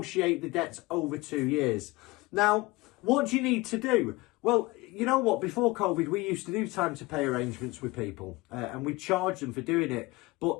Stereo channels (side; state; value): right; quieter; 21.9 dB